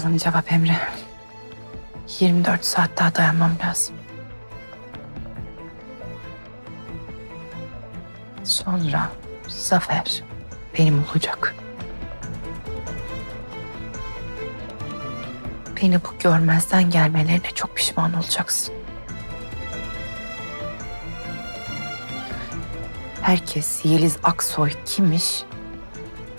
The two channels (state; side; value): inverted; both; correlation -1.00